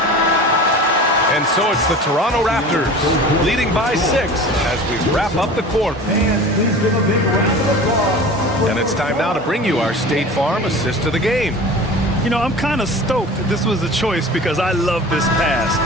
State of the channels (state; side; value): normal; both; correlation 0.38